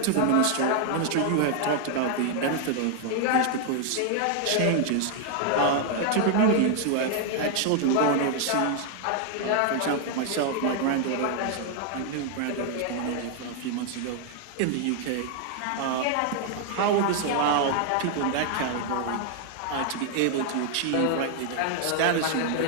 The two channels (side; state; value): both; different; correlation 0.00